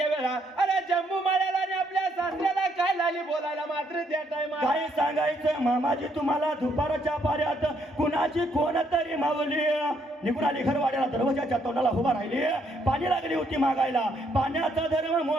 अरे जम्मू माळ्याला आणि आपल्या सासऱ्याला काय लागली बोलायला मात्र त्या टायमा काय सांगायचं मामाजी तुम्हाला दुपारच्या पाऱ्यात कुणाची कोण तरी मावली निघून आली घरवाड्याला दरवाजाच्या तोंडाला उभा राहिली पाणी लागली होती मागायला पाण्याचा धर्म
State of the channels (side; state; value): both; normal; correlation 0.71